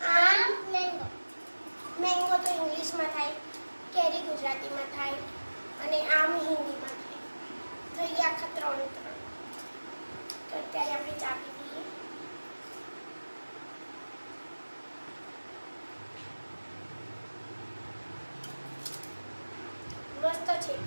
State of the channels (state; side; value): inverted; both; correlation -1.00